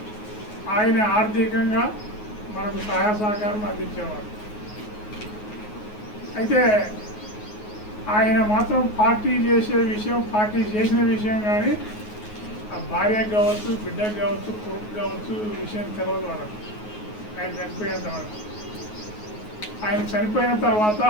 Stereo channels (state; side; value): late; right; 9.4 ms